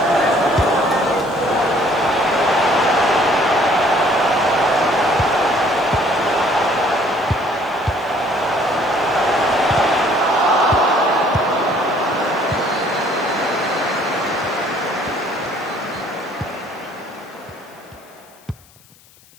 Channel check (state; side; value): noise; left; hiss, 27 dB below the sound